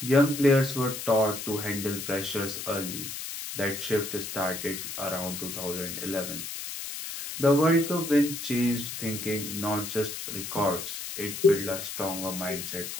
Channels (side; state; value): left; noise; hiss, 7 dB below the sound